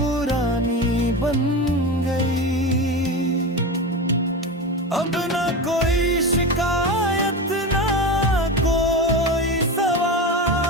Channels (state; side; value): normal; both; correlation 0.23